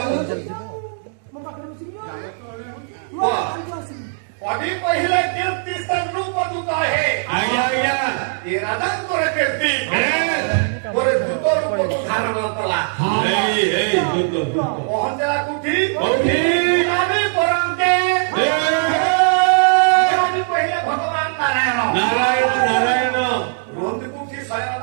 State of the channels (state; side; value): silent; left; digital silence